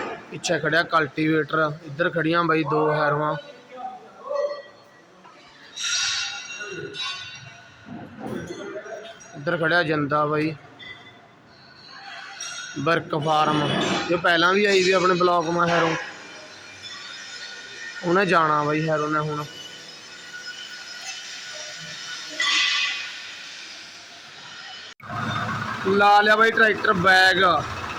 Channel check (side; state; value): both; identical; correlation 1.00